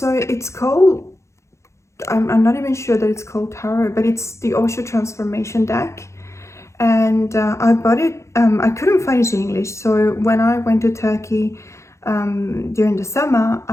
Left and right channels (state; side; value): late; right; 0.14 ms